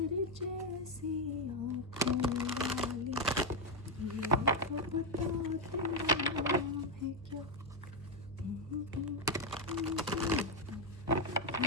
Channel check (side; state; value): both; normal; correlation 0.03